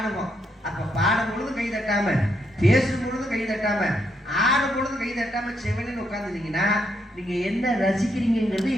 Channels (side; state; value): both; normal; correlation 0.77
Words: அப்ப பாடும் பொழுது கை தட்டாம, பேசும் பொழுது கை தட்டாம, ஆடும் பொழுது கை தட்டாம செவனின்னு உட்காந்துட்டீங்கன்னா நீங்க என்ன ரசிக்கிறீங்கிறது